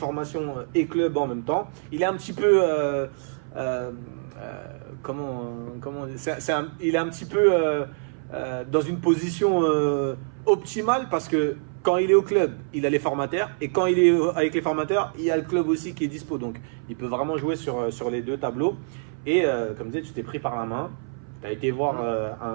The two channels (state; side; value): silent; left; 57 dB below the other